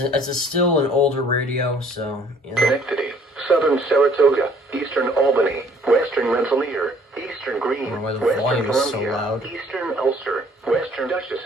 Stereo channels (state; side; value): normal; both; correlation 0.59